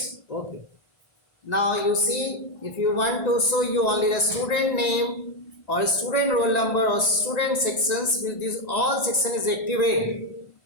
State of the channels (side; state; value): right; late; 1.9 ms